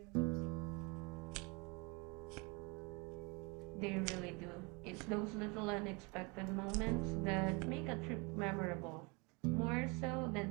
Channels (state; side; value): quieter; left; 29.3 dB